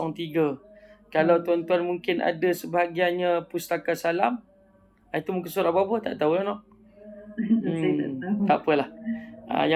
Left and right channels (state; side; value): identical; both; correlation 1.00